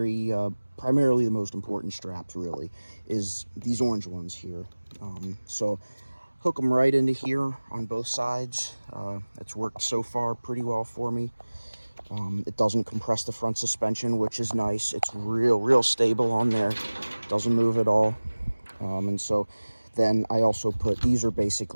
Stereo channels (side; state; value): both; inverted; correlation -1.00